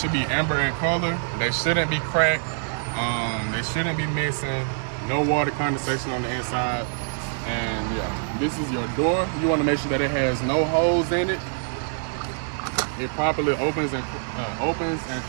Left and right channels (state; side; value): silent; left; digital silence